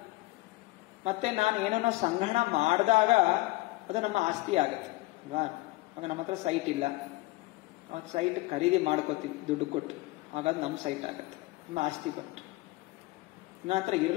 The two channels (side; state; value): right; quieter; 20.6 dB